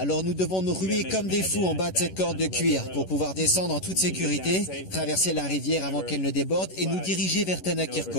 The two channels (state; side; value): late; right; 11 ms